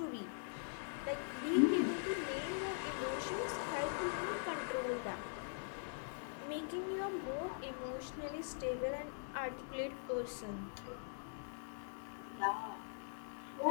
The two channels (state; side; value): silent; right; digital silence